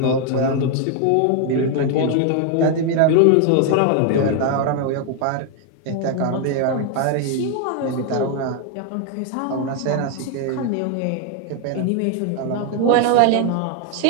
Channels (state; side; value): different; both; correlation 0.01